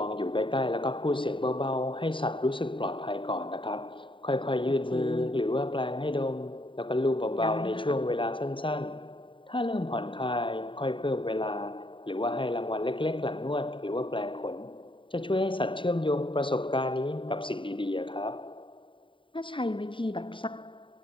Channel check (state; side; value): late; right; 0.25 ms